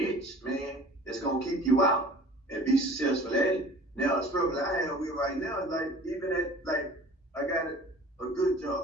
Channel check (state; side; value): normal; both; correlation 0.45